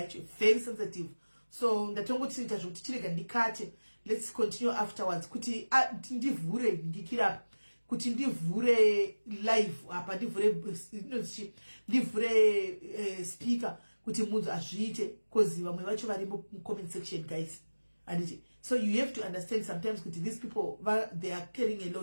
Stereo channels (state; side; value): inverted; both; correlation -1.00